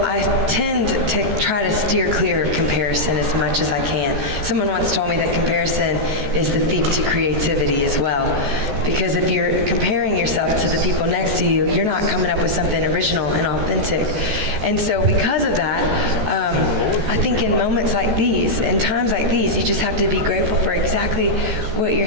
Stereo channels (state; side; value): late; left; 14 ms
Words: I tend to try to steer clear of comparison as much as I can. Someone once told me that comparison is the thief to creativity as well. Because if you're comparing yourself to the people next to you, you're not coming up with something original and authentic. And so because of that, I think in moments like these, in times like these, you just have to be grateful for exactly what you're